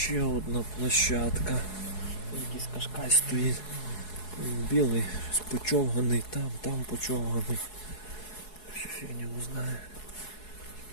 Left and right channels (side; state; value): right; late; 4.7 ms